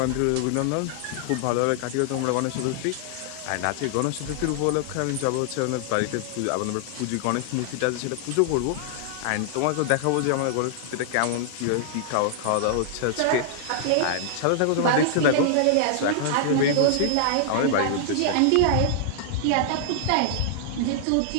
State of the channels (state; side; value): different; both; correlation -0.01